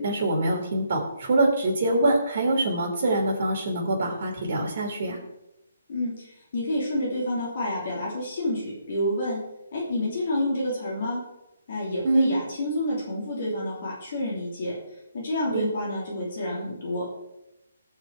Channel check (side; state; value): both; inverted; correlation -0.73